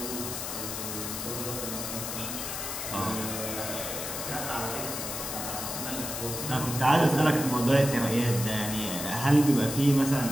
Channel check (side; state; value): left; noise; hiss, 5 dB below the sound